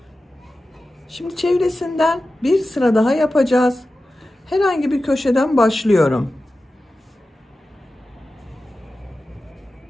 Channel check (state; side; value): normal; both; correlation 0.94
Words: Şimdi çevresinden bir sıra daha yapacağız. Herhangi bir köşeden başlıyorum.